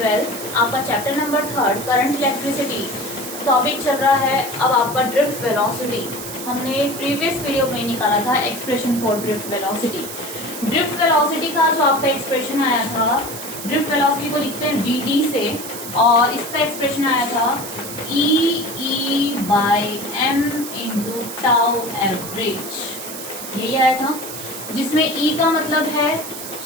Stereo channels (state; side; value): noise; right; hiss, 9 dB below the sound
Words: आपका chapter number 3 current electricity topic चल रहा है। अब आपका ड्रिफ्ट वेलोसिटी हमने प्रीवियस वीडियो में निकाला था expression for drift velocity. Drift velocity का जो आपका एक्सप्रेशन आया था, ड्रिफ्ट वेलोसिटी को लिखते हैं वीडी से, और इसका एक्सप्रेशन आया था E by M into tau average, यही आया था, जिसमें ई का मतलब है